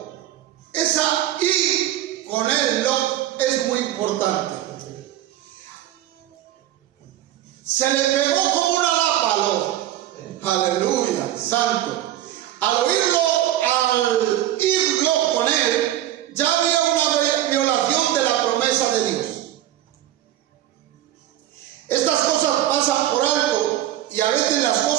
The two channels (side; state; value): left; quieter; 13.0 dB